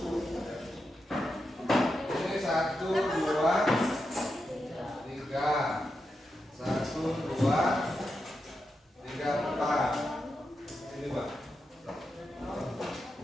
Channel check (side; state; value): both; normal; correlation 0.87